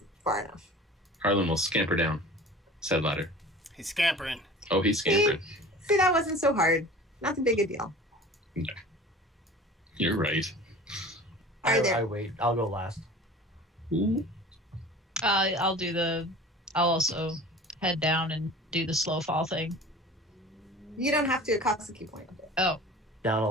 far enough. Harlan will scamper down said ladder. He's scampering. Oh, he's scampering. See, that wasn't so hard. Not too big a deal. You're right. All right, I there. wait. I'll go last. Ooh. I'll also head down and do the slow fall thing. You don't have to. It costs a key point. Oh, Down a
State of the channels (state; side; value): normal; both; correlation 0.41